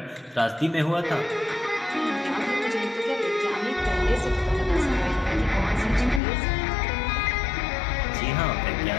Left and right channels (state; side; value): drops out; right; at 6.2 s